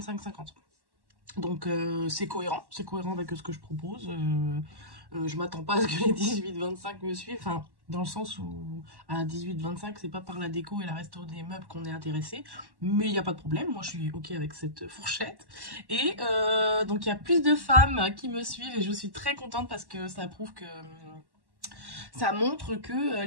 Donc, c'est cohérent avec ce que je propose. Je m'attends pas à ce que les 18-25 me suivent, enfin, dans le sens où à 18-25, c'est pas par la déco et la resto des meubles qu'on est intéressé, mais il n'y a pas de problème, moi je suis ok avec cette fourchette. Et donc il y a plus de femmes qui me suivent et je suis très contente parce que ça prouve que ça montre que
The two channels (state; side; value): late; left; 1.1 ms